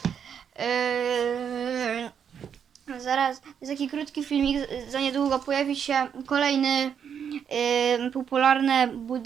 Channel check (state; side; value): quieter; left; 7.8 dB